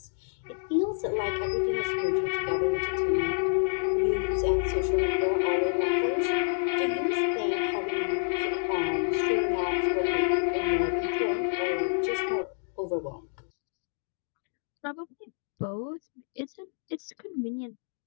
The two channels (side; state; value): right; silent; digital silence